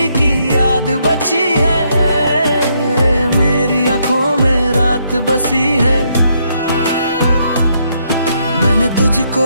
की याद बची है, मेरी आंखों में रात बसी है। मैंने तुझको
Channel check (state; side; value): inverted; both; correlation -0.75